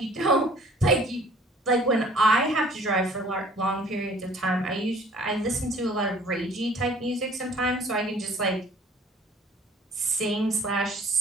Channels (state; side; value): normal; both; correlation 0.53